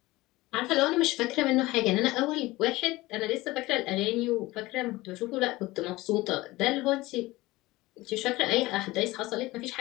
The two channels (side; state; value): right; quieter; 19.6 dB